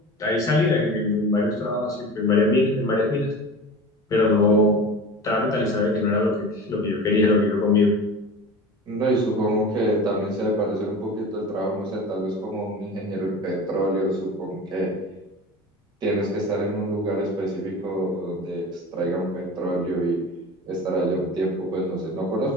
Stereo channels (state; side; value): normal; both; correlation 0.34